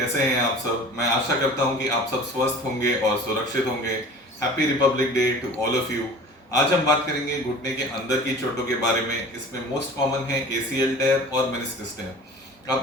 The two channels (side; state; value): both; normal; correlation 0.42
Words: हैं आप सब। मैं आशा करता हूं कि आप सब स्वस्थ होंगे और सुरक्षित होंगे। Happy Republic Day to all of you. आज हम बात करेंगे घुटने के अंदर की चोटों के बारे में। इसमें मोस्ट कॉमन है एसीएल टेयर और मेनिस्कस टेयर।